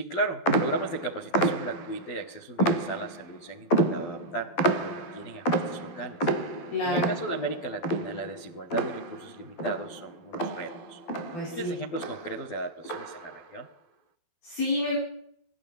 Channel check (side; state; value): right; late; 12 ms